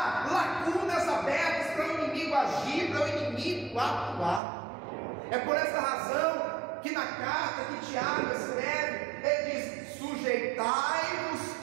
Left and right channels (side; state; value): left; drops out; at 4.4 s